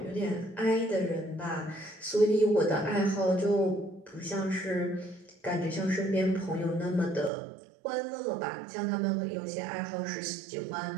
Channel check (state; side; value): drops out; left; at 7.3 s